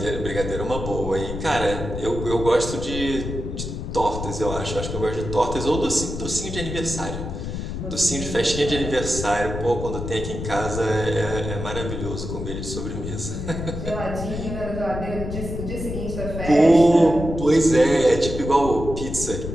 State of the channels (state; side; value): noise; left; rumble, 6 dB below the sound